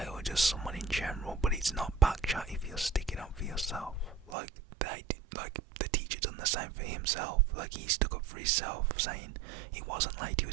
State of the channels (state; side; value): drops out; left; at 4.4 s